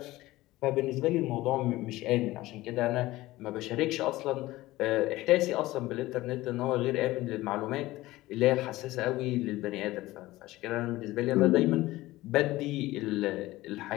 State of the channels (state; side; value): quieter; right; 17.9 dB